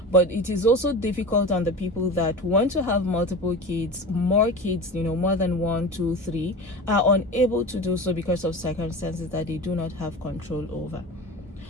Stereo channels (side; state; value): both; normal; correlation 0.31